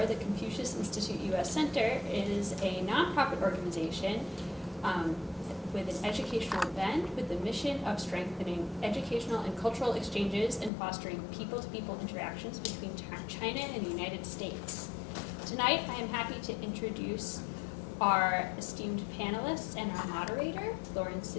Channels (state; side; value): drops out; right; at 10.7 s